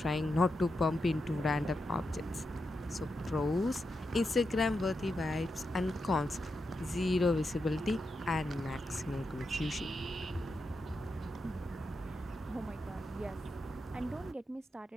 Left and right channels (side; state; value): both; normal; correlation 0.87